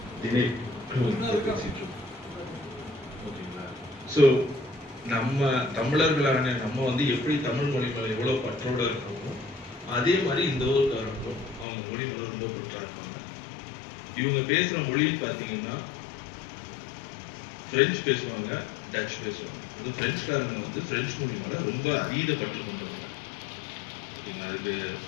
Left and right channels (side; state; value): right; drops out; at 11.7 s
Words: தினை பேசிட்டு இருக்கோம். ஓகேங்களா? ஸோ நம்ம தமிழர்களான நம்ம வந்து எப்படி தமிழ் மொழி மேல எவ்வளவு பற்றோட இருக்கோமோ அதே மாதிரி இந்த ஊருக்காரங்களும் அவங்க மொழி மேல ரொம்ப பற்றா இருக்காங்க. இவங்க பேசுற மொழின்னு பாத்தீங்கன்னா பிரெஞ்சு பேசுவாங்க, டச் பேசுவாங்க. இந்த பிரெஞ்சுக்காரங்க வந்து பிரெஞ்சு மொழி மேல ரொம்ப அதீத பற்று கொண்டவங்க. அதுக்கு